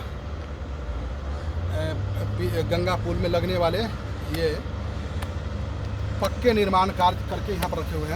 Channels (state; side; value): identical; both; correlation 1.00